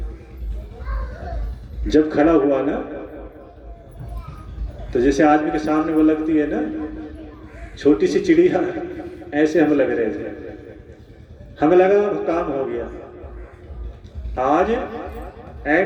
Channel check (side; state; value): both; identical; correlation 1.00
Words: जब खड़ा हुआ ना, तो जैसे आदमी के सामने वो लगती है ना छोटी सी चिड़िया, ऐसे हम लग रहे थे। हमें लगा काम हो गया, आज